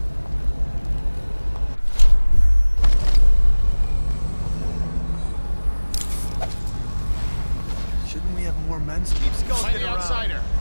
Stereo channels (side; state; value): both; inverted; correlation -1.00